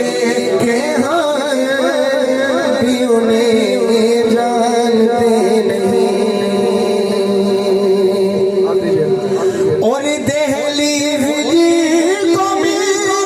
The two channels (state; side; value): identical; both; correlation 1.00